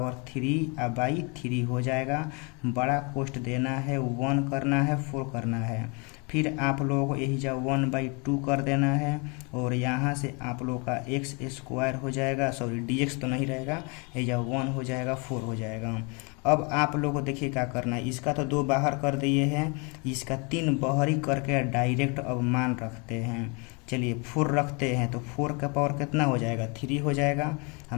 3 और बाई 3 हो जाएगा। बड़ा कोष्ट देना है, 1 करना है 4 करना है, फिर आप लोगों को यही जा 1/2 कर देना है और यहाँ से आप लोग का एक्स स्क्वायर हो जाएगा, सॉरी dx तो नहीं रहेगा, यही जा 1 हो जाएगा 4 हो जाएगा। अब आप लोगों को देखिए क्या करना है, इसका तो 2 बाहर कर दिए हैं, इसका 3 बाहरी करके डायरेक्ट अब मान रखते हैं। चलिए 4 रखते हैं तो 4 का पावर कितना हो जाएगा 3 हो जाएगा,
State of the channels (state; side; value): quieter; right; 32.2 dB